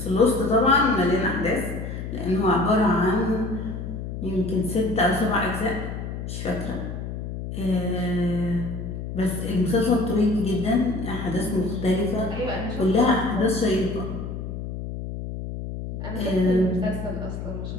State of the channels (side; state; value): left; noise; hum, 6 dB below the sound